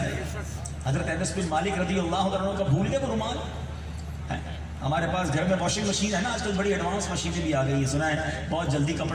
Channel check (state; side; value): identical; both; correlation 1.00